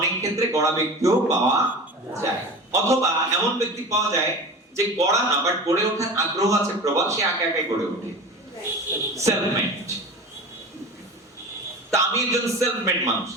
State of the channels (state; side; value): normal; both; correlation 0.33